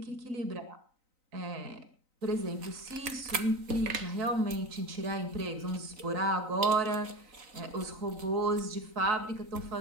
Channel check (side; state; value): left; late; 3.9 ms